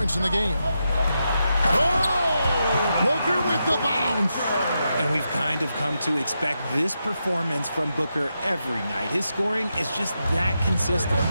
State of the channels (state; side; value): inverted; both; correlation -0.86